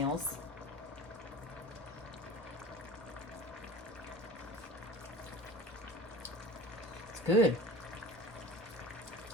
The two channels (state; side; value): normal; both; correlation 0.40